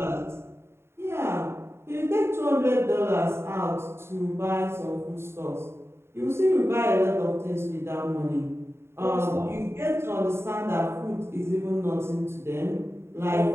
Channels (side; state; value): left; late; 0.12 ms